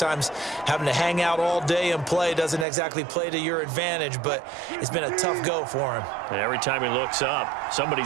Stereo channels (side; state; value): left; drops out; at 2.7 s